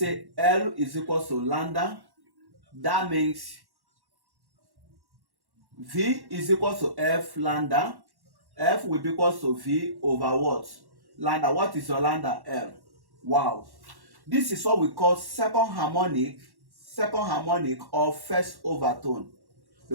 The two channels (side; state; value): left; late; 1.1 ms